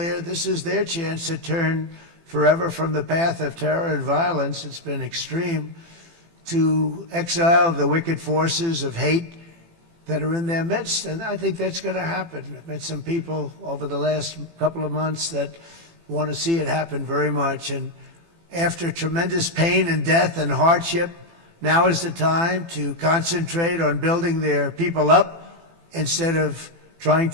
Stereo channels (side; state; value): left; late; 18 ms